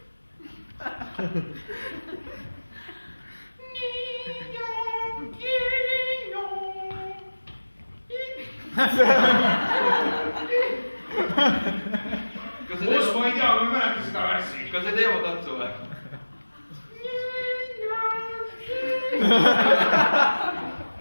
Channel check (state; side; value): inverted; both; correlation -1.00